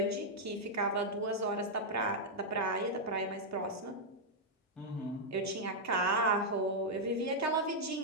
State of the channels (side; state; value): both; normal; correlation -0.04